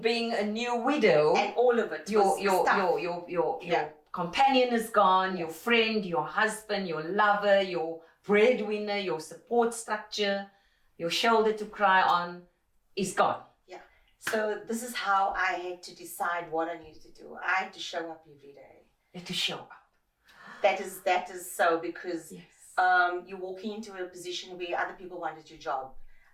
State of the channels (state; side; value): identical; both; correlation 1.00